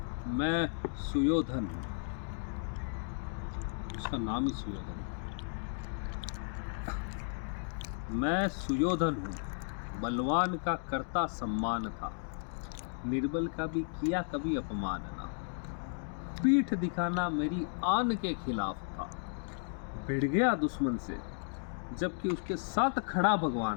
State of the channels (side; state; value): right; silent; digital silence